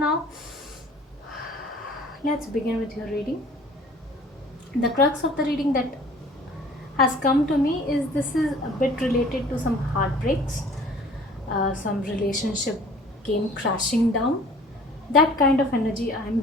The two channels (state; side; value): normal; both; correlation 0.50